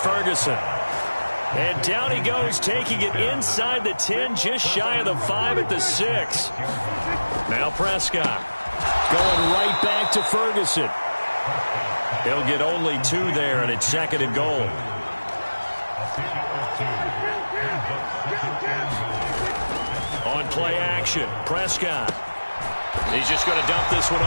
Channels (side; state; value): both; inverted; correlation -1.00